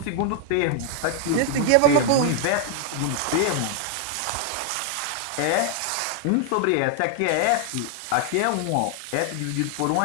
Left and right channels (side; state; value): both; different; correlation 0.00